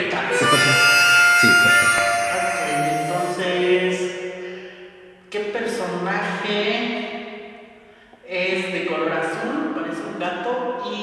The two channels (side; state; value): both; identical; correlation 1.00